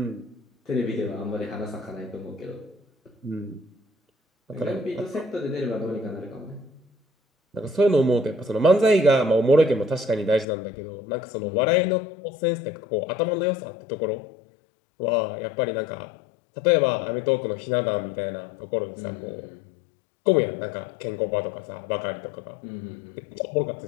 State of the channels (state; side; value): drops out; right; at 10.5 s